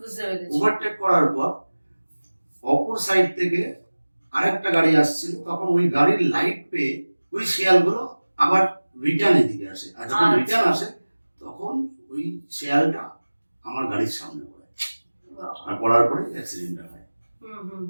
ওভারটেক করার পর অপর সাইড থেকে আরেকটা গাড়ি আসছিল, তখন ওই গাড়ির লাইট পেয়ে ওই শেয়ালগুলো আবার রিটার্ন এদিকে আসে, আর যখন রিটার্ন আসে তখন ওই শেয়ালটা আমার গাড়ির সামনে পড়ে, আর পড়ার পরে অ্যাক্সিডেন্টটা হয়।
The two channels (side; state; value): both; inverted; correlation -1.00